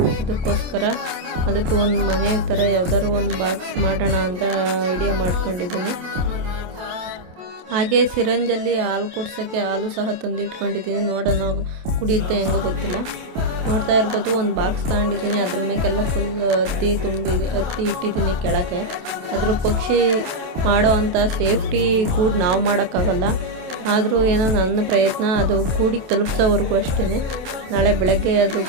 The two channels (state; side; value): late; left; 28 ms